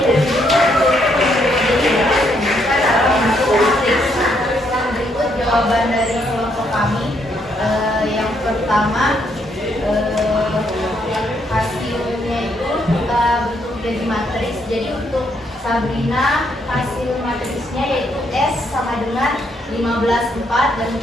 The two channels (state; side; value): normal; both; correlation 0.73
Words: buku dan pulpen yang mereka beli? Kita dalam bentuk matriks. Berikut jawaban dari kelompok kami. Yang pertama, hasilnya itu kita bentuk jadi matriks. Jadi untuk Sabrina hasil matriksnya yaitu S sama dengan 15,4, dan